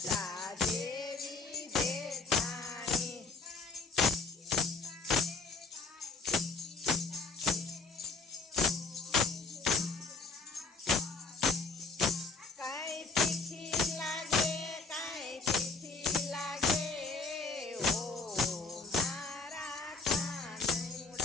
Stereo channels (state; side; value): quieter; right; 4.2 dB